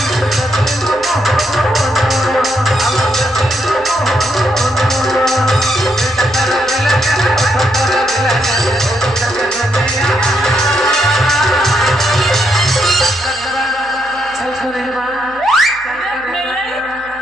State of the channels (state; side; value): noise; right; hum, 24 dB below the sound